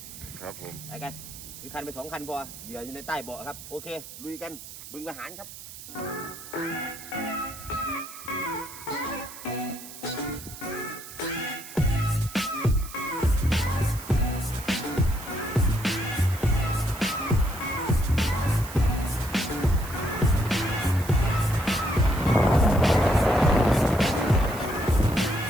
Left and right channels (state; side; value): noise; right; hiss, 14 dB below the sound